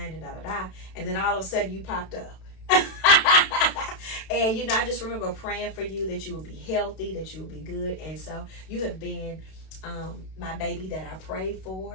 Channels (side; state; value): right; late; 32 ms